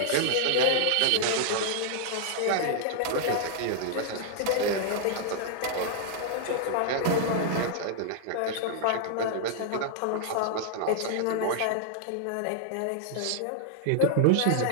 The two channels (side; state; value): both; different; correlation -0.01